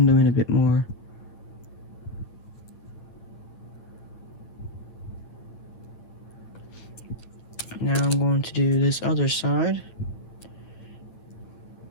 in a bit more. Now I'm going to do this other side.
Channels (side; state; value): right; late; 9.0 ms